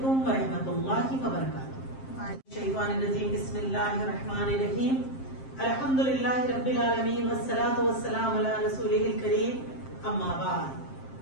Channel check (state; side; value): late; right; 7.5 ms